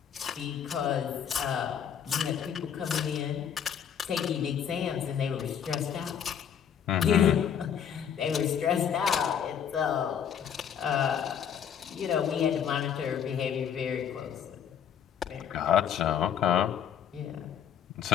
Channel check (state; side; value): quieter; right; 8.4 dB